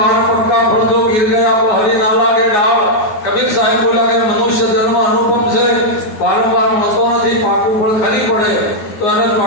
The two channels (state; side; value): late; right; 9.4 ms